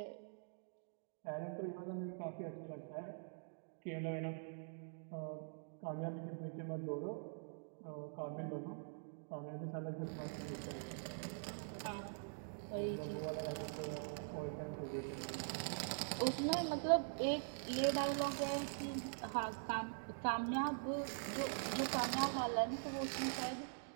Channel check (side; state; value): left; silent; digital silence